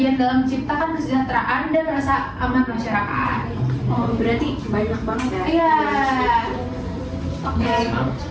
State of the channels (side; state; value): both; identical; correlation 1.00